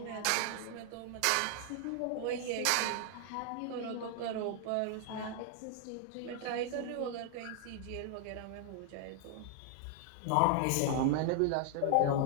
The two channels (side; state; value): both; different; correlation 0.00